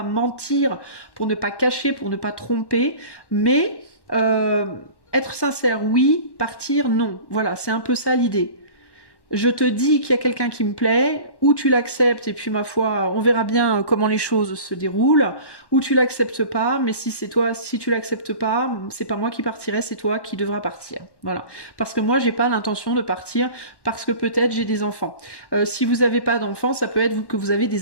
mentir, pour ne pas cacher, pour ne pas tromper. Mais être sincère, oui. Partir, non. Voilà, c'est un peu ça l'idée. Je te dis qu'il y a quelqu'un qui me plaît, ou tu l'acceptes, et puis ma foi, on verra bien comment les choses se déroulent, ou tu l'acceptes pas, mais si tu l'acceptes pas, c'est pas moi qui partirai, c'est toi qui devras partir. Voilà. Parce que moi, j'ai pas l'intention de partir, parce que peut-être j'ai des enfants. Si vous avez pas d'enfants, ça peut être que vous avez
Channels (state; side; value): late; right; 1.1 ms